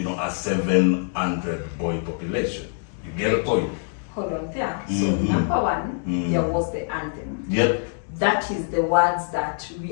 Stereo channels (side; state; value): right; silent; digital silence